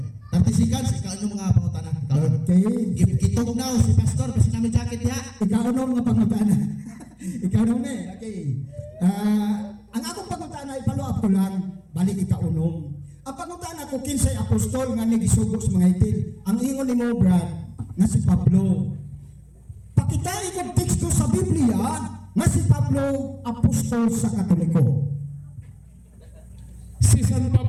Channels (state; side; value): identical; both; correlation 1.00